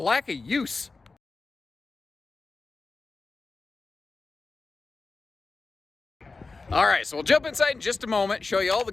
of use. All right, so we'll jump inside in just a moment, show you all the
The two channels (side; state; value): right; quieter; 3.9 dB